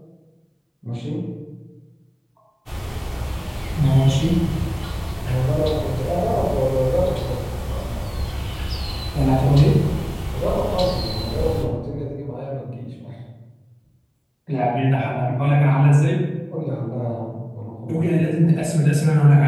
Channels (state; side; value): identical; both; correlation 1.00